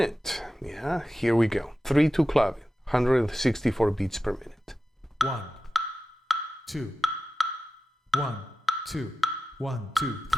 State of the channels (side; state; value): both; normal; correlation 0.94